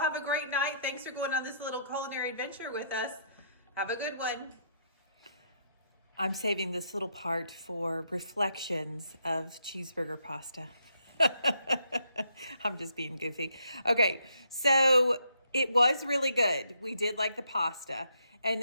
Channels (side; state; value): both; inverted; correlation -0.73